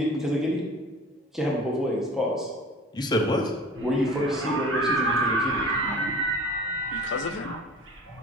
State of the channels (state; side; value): normal; both; correlation 0.42